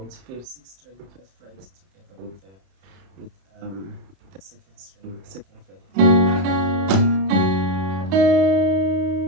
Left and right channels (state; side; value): late; left; 31 ms